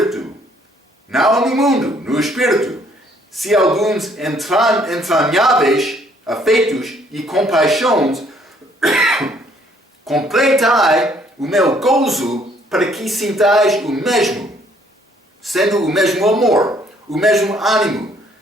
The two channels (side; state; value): both; normal; correlation 0.64